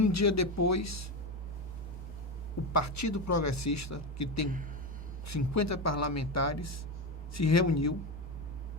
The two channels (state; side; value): normal; both; correlation 0.16